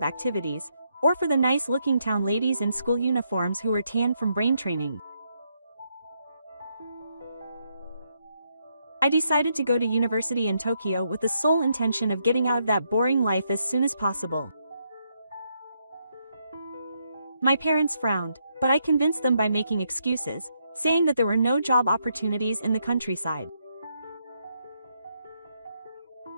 activities, or for the nice-looking town ladies in school uniforms who were tanned from brain training. I decided to go to university in Tokyo with the sole intention of getting out of that boring life as soon as possible. My parents frowned, but I convinced them by making excuses, saying that there were no job opportunities in the countryside.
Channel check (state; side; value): inverted; both; correlation -0.78